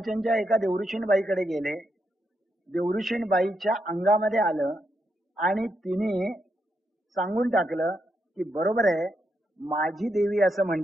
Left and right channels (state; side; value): normal; both; correlation 0.81